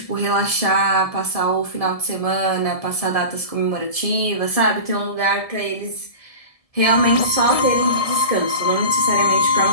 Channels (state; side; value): late; right; 1.7 ms